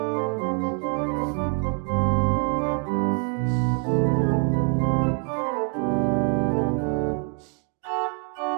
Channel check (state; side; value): quieter; left; 39.2 dB